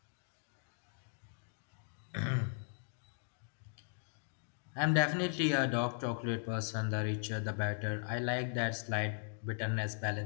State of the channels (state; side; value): silent; right; digital silence